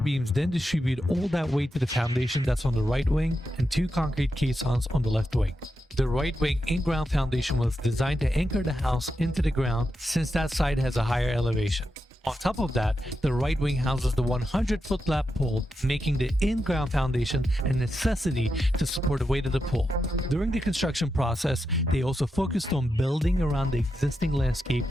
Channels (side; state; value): both; normal; correlation 0.87